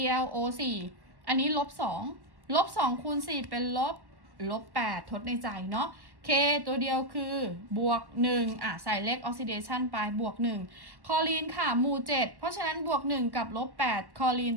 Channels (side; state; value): left; late; 1.1 ms